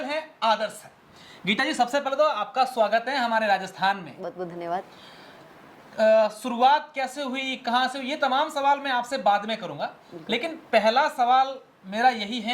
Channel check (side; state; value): both; identical; correlation 1.00